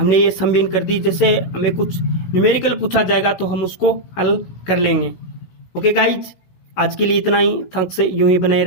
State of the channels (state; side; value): late; right; 16 ms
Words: ये समभिन्न कर दी। जैसे हमें कुछ न्यूमेरिकल पूछा जाएगा तो हम उसको हल कर लेंगे। ओके गाइज, आज के लिए इतना ही। थैंक्स, यूं ही बने